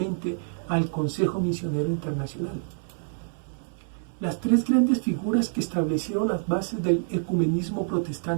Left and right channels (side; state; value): left; silent; 60 dB below the other